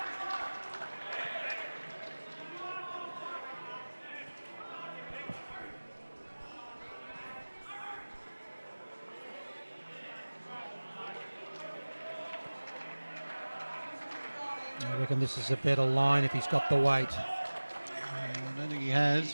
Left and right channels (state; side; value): inverted; both; correlation -1.00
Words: I reckon this is a better line if he's got the weight. I don't think he